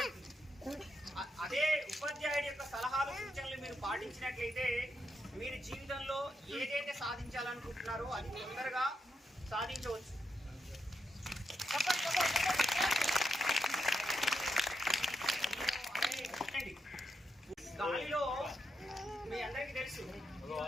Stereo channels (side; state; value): both; normal; correlation 0.83